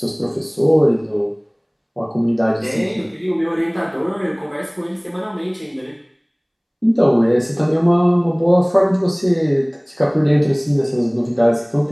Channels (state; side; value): identical; both; correlation 1.00